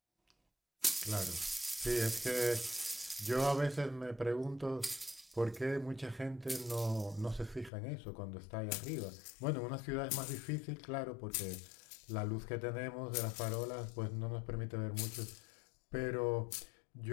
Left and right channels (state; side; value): drops out; right; at 7.7 s